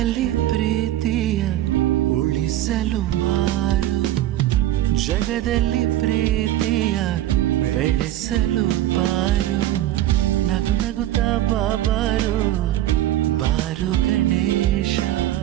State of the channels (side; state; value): left; quieter; 13.5 dB